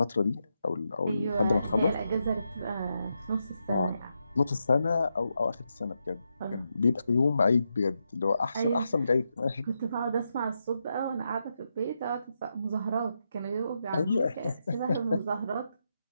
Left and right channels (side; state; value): both; inverted; correlation -0.84